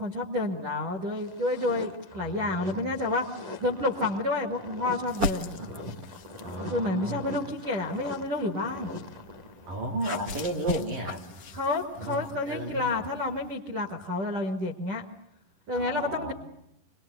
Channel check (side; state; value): left; late; 11 ms